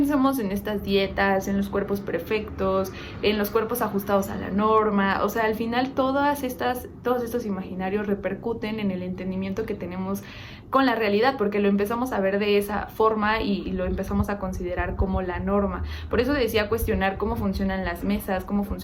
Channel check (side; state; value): both; identical; correlation 1.00